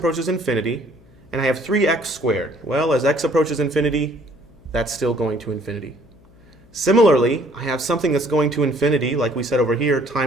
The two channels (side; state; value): left; noise; hum, 27 dB below the sound